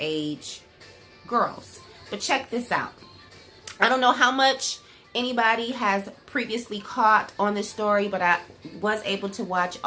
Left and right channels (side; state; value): both; identical; correlation 1.00